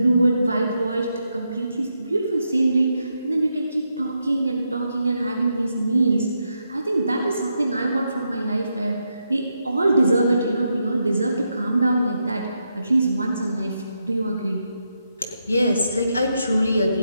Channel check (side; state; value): both; inverted; correlation -0.83